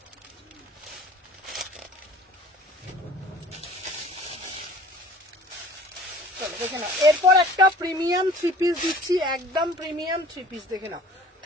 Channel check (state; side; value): normal; both; correlation 0.48